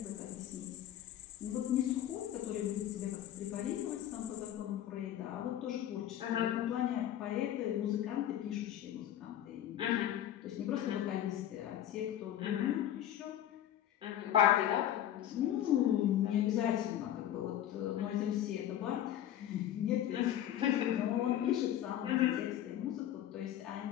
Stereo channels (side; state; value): right; quieter; 11.5 dB